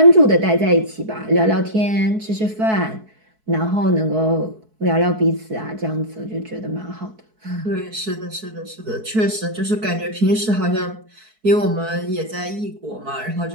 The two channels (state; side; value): late; left; 4.6 ms